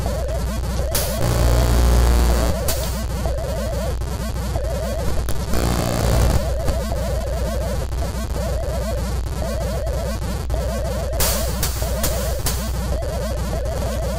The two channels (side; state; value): both; identical; correlation 1.00